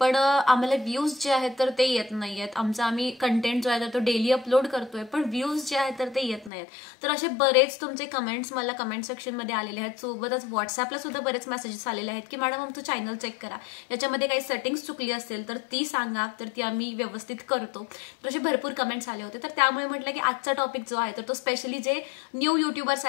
आम्हाला व्ह्यूज जे आहेत तर ते येत नाहीयेत. आम्ही कंटेंट जो आहे तर तो डेली अपलोड करतोय, पण व्ह्यूज जे आहेत तर ते येत नाहीत. तर असे बरेच तुमचे कमेंट्स मला कमेंट सेक्शनमध्ये आलेले आहेत. सोबतच व्हॉट्सअपला सुद्धा बरेच मेसेजेस आलेले आहेत की मॅडम आमचं चॅनल चेक करा, याच्यामध्ये काही सेटिंग्स चुकली असेल तर ती सांगा, तर ती आम्ही व्यवस्थित करतो. तर असे भरपूर कमेंट्स आले होते. तर त्यामुळे म्हटलं की आजचा टॉपिक जो आहे तर तो स्पेशली जे न्यू युट्यूबर्स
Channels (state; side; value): drops out; right; at 6.5 s